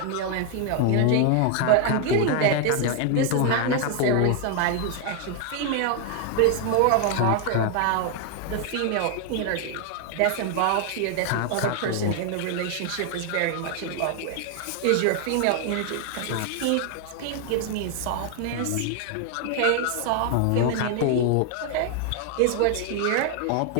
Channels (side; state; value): both; different; correlation 0.00